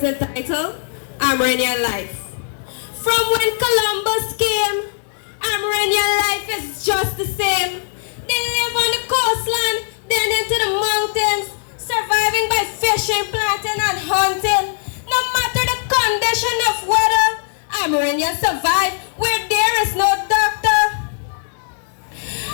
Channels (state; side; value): silent; right; digital silence